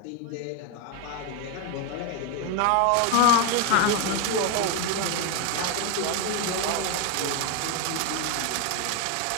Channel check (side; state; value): both; different; correlation 0.01